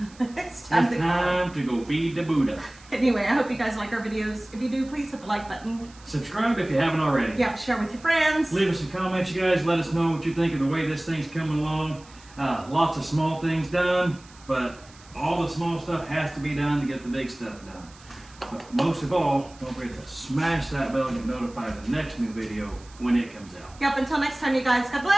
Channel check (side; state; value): right; noise; hiss, 24 dB below the sound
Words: it's time It's to time to go feed the Buddha. Anyway, I hope you guys like our videos. If you do, please hit the like button. Subscribe if you haven't already. Yeah, share with your friends. Leave us some comments, you guys. Let us know what you think of the way this thing's coming along. Lots of small things done, but all the small stuff has to be done to get the big stuff done. But most of all, don't forget to smash that bell and get notified of the next new video when it comes out. Yep, until next time, you guys. God